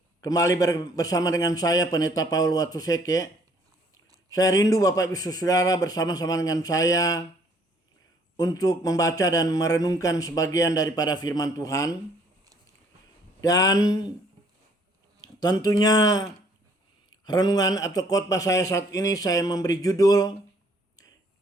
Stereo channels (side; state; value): both; normal; correlation 0.62